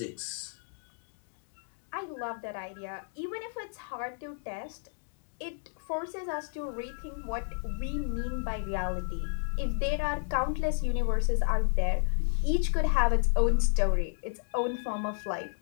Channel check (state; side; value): silent; right; digital silence